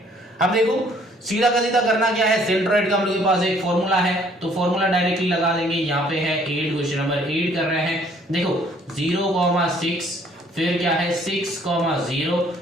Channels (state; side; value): normal; both; correlation 0.61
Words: अब देखो सीधा का सीधा करना क्या है, सेंट्रॉइड का हम लोग के पास एक फॉर्मूला है, तो फॉर्मूला डायरेक्टली लगा देंगे। यहाँ पे है 8, क्वेश्चन नंबर 8 कर रहे हैं। देखो 0,6, फिर क्या है 6,0,